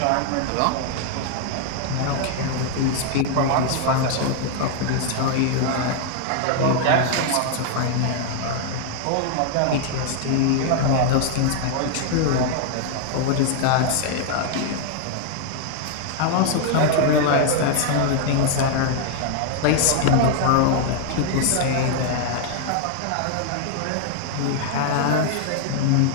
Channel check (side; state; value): both; different; correlation 0.00